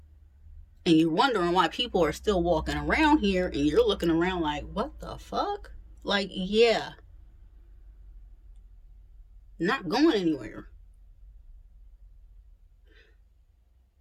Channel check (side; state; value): both; identical; correlation 1.00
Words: And you're wondering why people are still walking around here and you're looking around like, what the fuck? Like, yeah, not going anywhere.